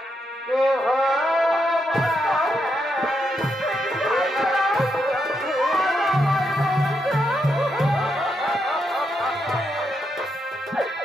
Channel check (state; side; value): normal; both; correlation 0.81